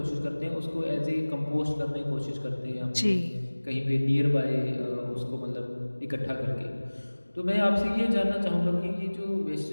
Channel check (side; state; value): both; inverted; correlation -1.00